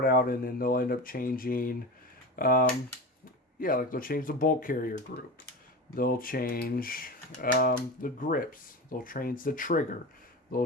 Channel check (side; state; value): both; normal; correlation 0.27